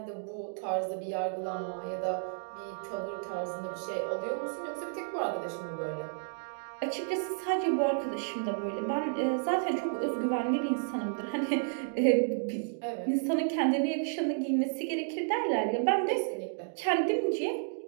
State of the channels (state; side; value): silent; left; digital silence